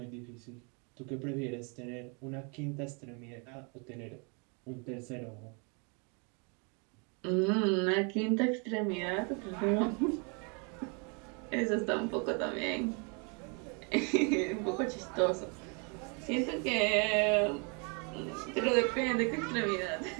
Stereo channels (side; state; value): left; quieter; 35.0 dB